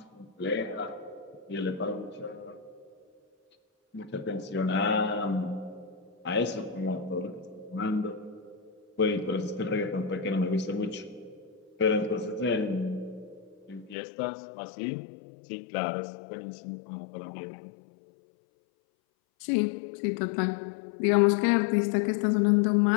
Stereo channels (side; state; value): right; drops out; at 14.0 s